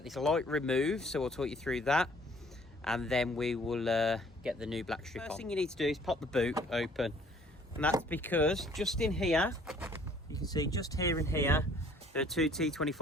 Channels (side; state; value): both; normal; correlation 0.57